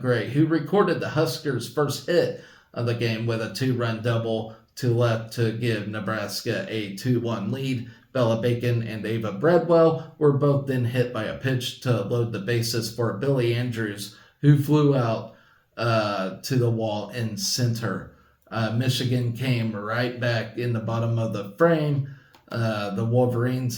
Gray, who recorded the Huskers' first hit of the game with a 2-run double to left to give Nebraska a 2-1 lead. Bella Bacon and Ava Breadwell were both then hit by a pitch to load the bases for Billy Andrews, who flew out to the wall in center. Michigan came right back in the bottom of the frame. The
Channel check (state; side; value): identical; both; correlation 1.00